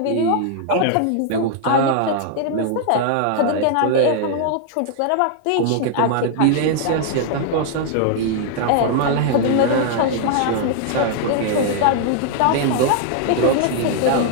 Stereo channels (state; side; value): different; both; correlation -0.01